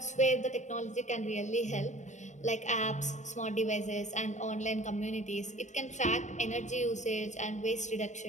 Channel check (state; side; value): late; right; 0.34 ms